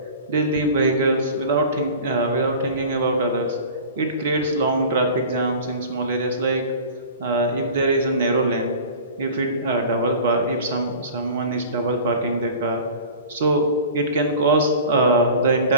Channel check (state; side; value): inverted; both; correlation -0.40